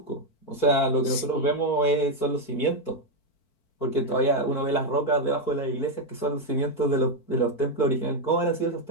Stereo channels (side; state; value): right; late; 4.5 ms